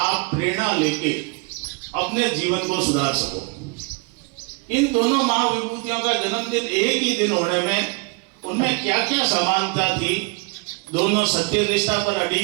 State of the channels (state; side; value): quieter; left; 30.8 dB